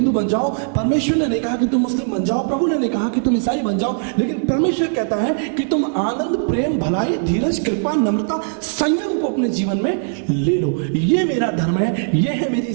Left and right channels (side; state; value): left; silent; digital silence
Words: बन जाओ, परमेश्वर ने नहीं कहा कि तुम मुस्लिम बन जाओ, प्रभु ने नहीं कहा कि तुम ईसाई बन जाओ, लेकिन परमेश्वर कहता है कि तुम आनंद, प्रेम, भलाई, धीरज, कृपा, नम्रता, संयम को अपने जीवन में ले लो। ये मेरा धर्म है, ये है मेरी